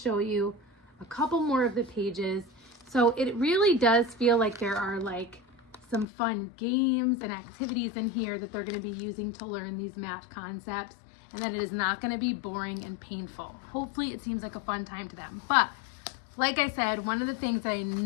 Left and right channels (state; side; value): drops out; right; at 6.1 s